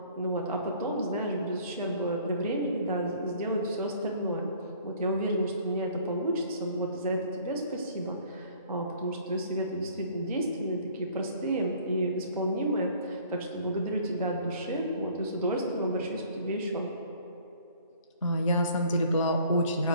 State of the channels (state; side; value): inverted; both; correlation -0.55